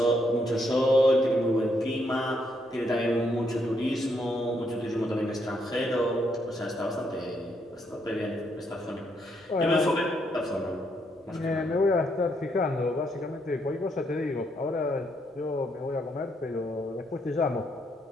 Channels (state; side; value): normal; both; correlation 0.75